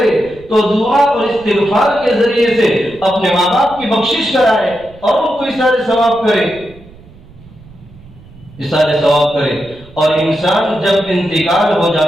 تو دعا اور استغفار کے ذریعے سے اپنے ماں باپ کی بخشش کرائے اور ان کو ایصال ثواب کرے، ایصال ثواب کرے۔ اور انسان جب انتقال ہو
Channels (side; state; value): right; noise; rumble, 22 dB below the sound